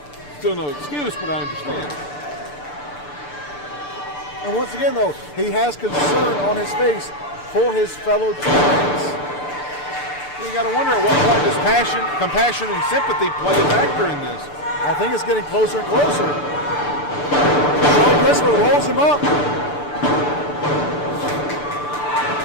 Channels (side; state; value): right; late; 6.8 ms